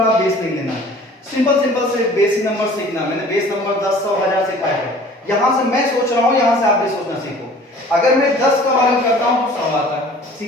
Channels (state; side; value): normal; both; correlation 0.48